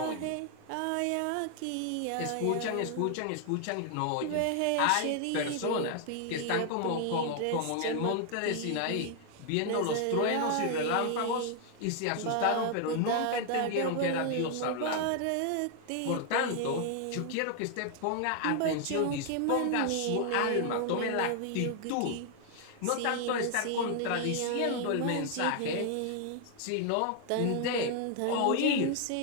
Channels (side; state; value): both; different; correlation 0.00